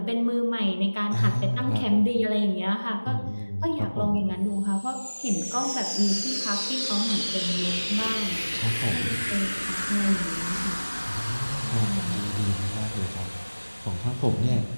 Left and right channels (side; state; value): both; inverted; correlation -1.00